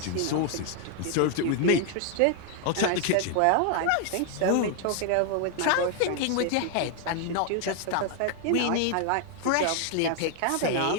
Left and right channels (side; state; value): both; different; correlation 0.00